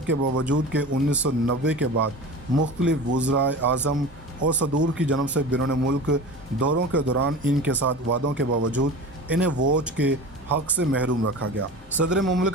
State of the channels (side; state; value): both; normal; correlation 0.33